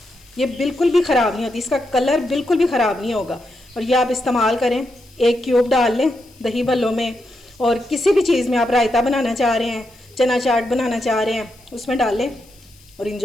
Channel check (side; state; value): left; noise; hiss, 28 dB below the sound